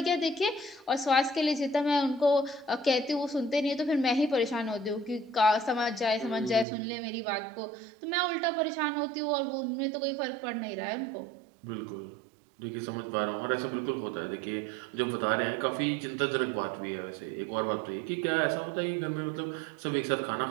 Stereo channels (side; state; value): left; drops out; at 6.7 s